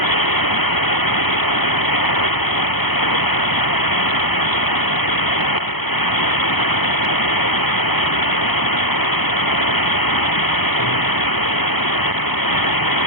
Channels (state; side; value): late; right; 0.98 ms